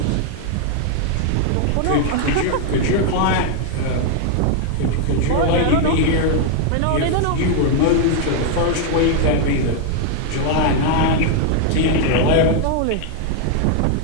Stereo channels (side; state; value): both; different; correlation 0.00